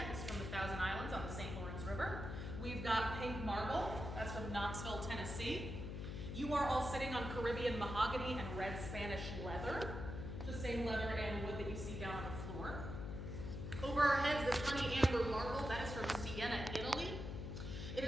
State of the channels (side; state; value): left; noise; hum, 5 dB below the sound